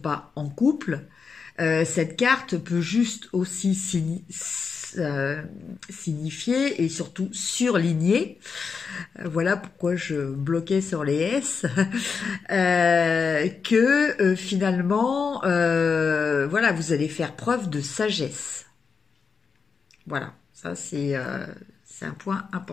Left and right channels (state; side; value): quieter; right; 5.5 dB